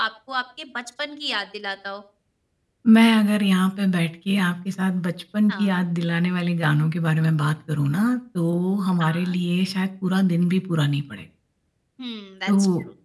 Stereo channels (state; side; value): identical; both; correlation 1.00